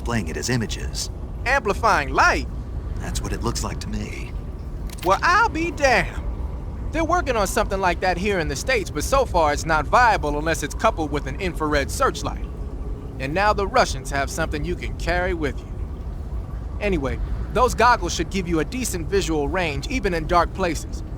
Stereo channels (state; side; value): identical; both; correlation 1.00